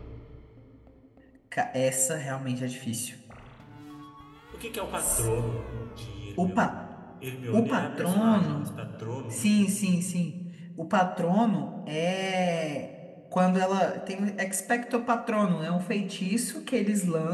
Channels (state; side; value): identical; both; correlation 1.00